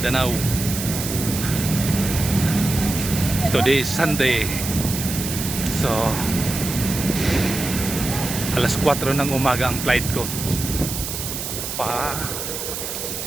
Today is Sunday. So, alas 4 ng umaga ang flight ko. Pa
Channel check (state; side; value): noise; right; hiss, 5 dB below the sound